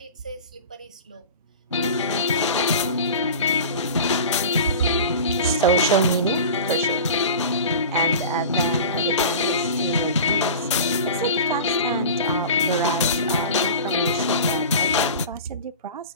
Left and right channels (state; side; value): inverted; both; correlation -0.34